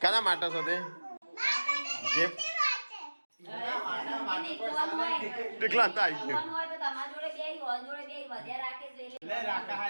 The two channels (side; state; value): both; inverted; correlation -1.00